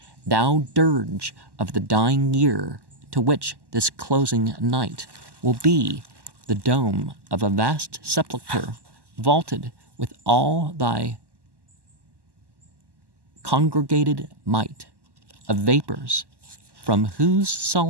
thou dirge of the dying year, to which this closing night will be the dome of a vast sepulchre, vaulted with all thy congregated might of vapors, from whose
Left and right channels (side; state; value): left; late; 1.1 ms